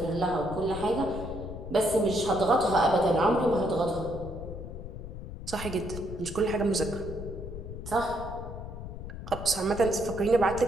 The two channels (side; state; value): left; noise; rumble, 9 dB below the sound